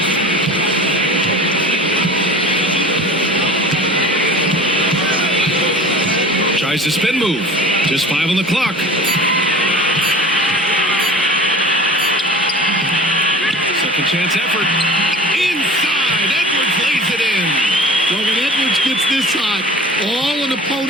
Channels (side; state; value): both; normal; correlation 0.39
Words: Tries to spin move. Just 5 on the clock. Second chance effort. Inside. Edwards lays it in. Well, when Edwards gets this hot, all an